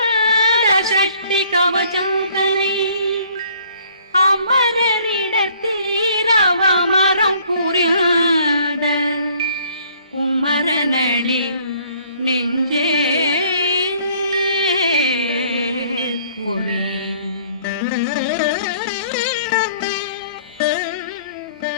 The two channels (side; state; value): both; inverted; correlation -0.58